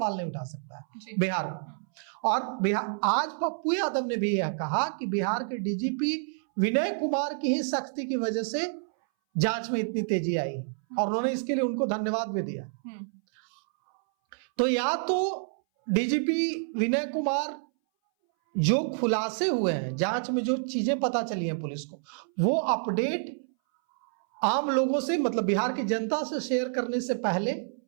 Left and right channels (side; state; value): left; silent; 59 dB below the other